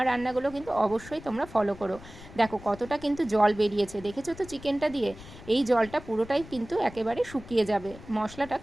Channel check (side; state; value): left; noise; rumble, 17 dB below the sound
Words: রান্নাগুলো কিন্তু অবশ্যই তোমরা ফলো করো। দেখো কতটা কিন্তু জল বেরিয়েছে, দেখেছো তো চিকেনটা দিয়ে? এই জলটা পুরোটাই কিন্তু একেবারে শুকিয়ে যাবে। মশলাটা